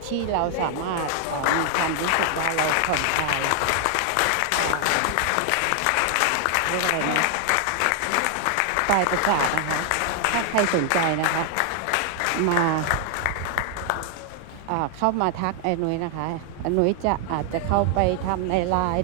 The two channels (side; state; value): both; different; correlation 0.00